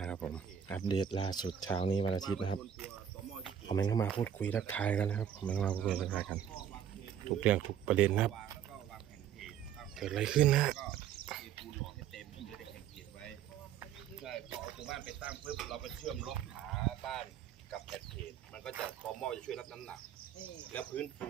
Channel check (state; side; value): quieter; left; 9.2 dB